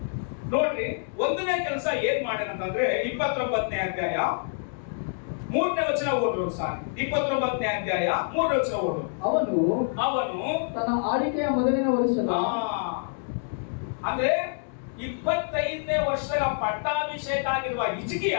ನೋಡ್ರಿ, ಒಂದನೇ ಕೆಲಸ ಏನ್ ಮಾಡ್ಯಾನಂತಂದ್ರೆ 29ನೇ ಅಧ್ಯಾಯ 3ನೇ ವಚನ ಓದ್ರು ಸಾರಿ. 29ನೇ ಅಧ್ಯಾಯ 3ನೇ ವಚನ ಓದು. ಅವನು ತನ್ನ ಆಳ್ವಿಕೆಯ ಮೊದಲನೇ ವರ್ಷದ ಅಂದ್ರೆ 25ನೇ ವರ್ಷದ ಪಟ್ಟಾಭಿಷೇಕ ಆಗಿರುವ ಹಿಜ್ಕೀಯ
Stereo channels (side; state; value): right; silent; digital silence